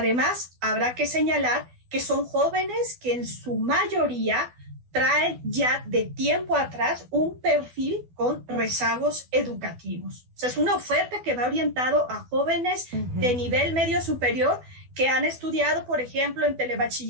habrá que señalar que son jóvenes que en su mayoría traen ya de tiempo atrás un perfil con rezagos educativos. O sea, es una oferta que va orientado a jóvenes de nivel medio superior que han estudiado, por ejemplo, en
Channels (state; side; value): late; left; 12 ms